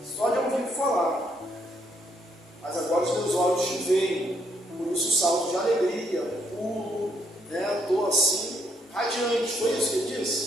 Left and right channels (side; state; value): both; normal; correlation 0.73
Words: só de ouvir falar, mas agora os meus olhos te veem, por isso o salto de alegria, pulo, né? Estou assim, radiante. Foi isso que ele